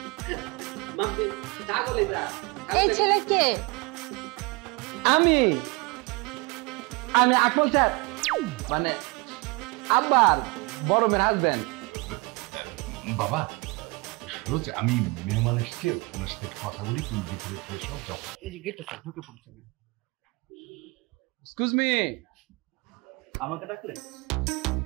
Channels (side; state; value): left; quieter; 27.1 dB